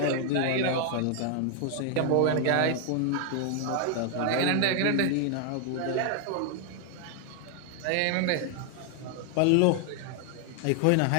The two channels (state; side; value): different; both; correlation 0.00